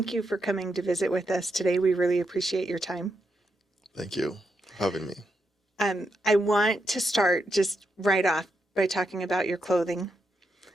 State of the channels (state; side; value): normal; both; correlation 0.83